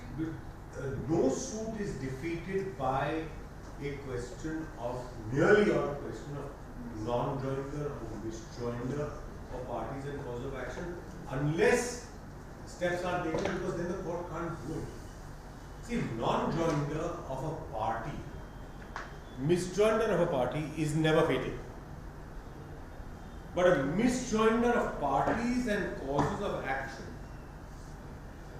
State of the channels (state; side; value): identical; both; correlation 1.00